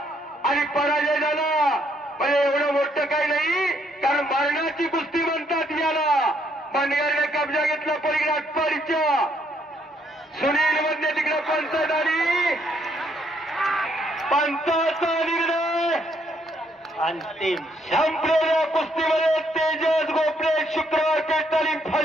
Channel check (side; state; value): both; normal; correlation 0.71